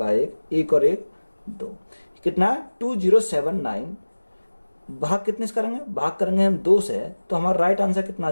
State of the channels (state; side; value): inverted; both; correlation -1.00